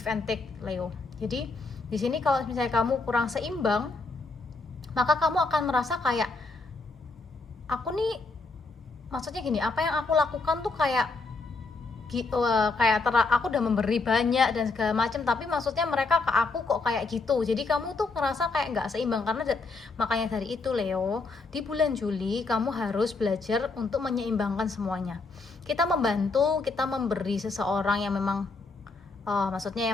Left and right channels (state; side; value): quieter; right; 3.8 dB